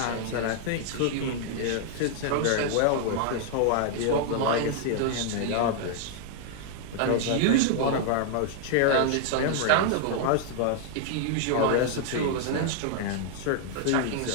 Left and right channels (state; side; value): different; both; correlation -0.01